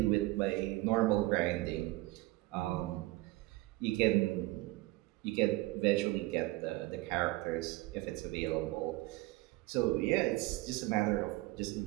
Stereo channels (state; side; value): quieter; left; 19.7 dB